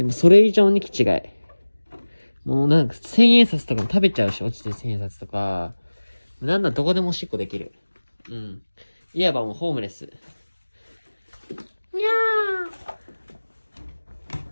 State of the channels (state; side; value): inverted; both; correlation -1.00